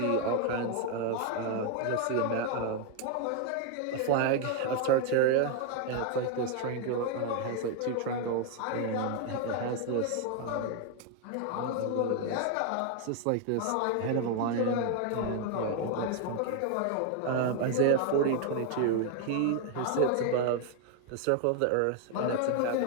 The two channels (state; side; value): different; both; correlation 0.01